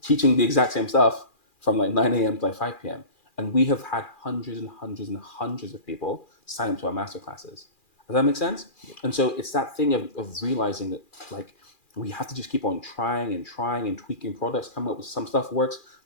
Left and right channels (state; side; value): late; right; 2.4 ms